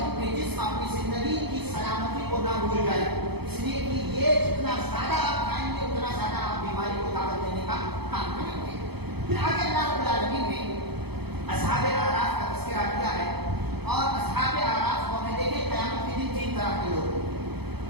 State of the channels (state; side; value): late; left; 0.98 ms